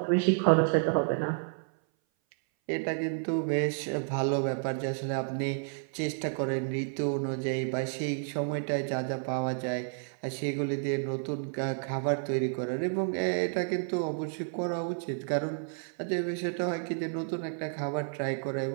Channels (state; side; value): silent; left; 57 dB below the other